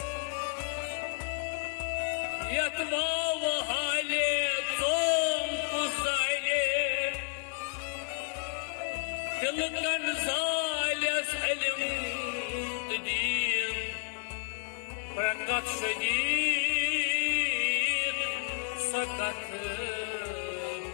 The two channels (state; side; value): silent; right; 57 dB below the other